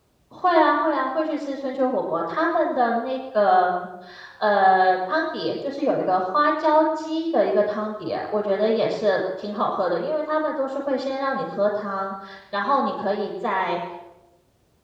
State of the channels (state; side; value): identical; both; correlation 1.00